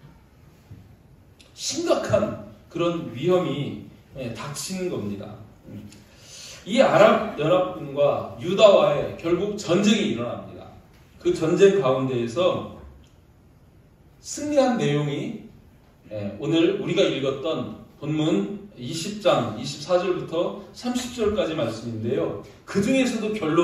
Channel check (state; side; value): identical; both; correlation 1.00